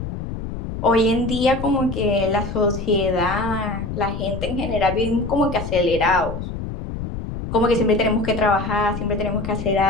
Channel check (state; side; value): noise; left; rumble, 7 dB below the sound